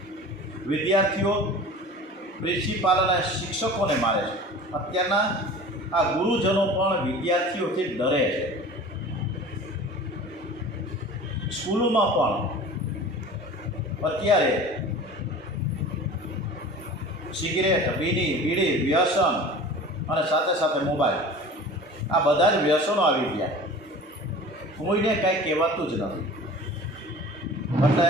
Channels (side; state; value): both; normal; correlation 0.40